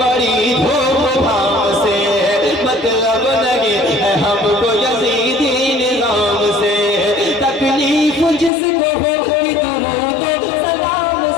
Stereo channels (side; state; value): right; drops out; at 8.5 s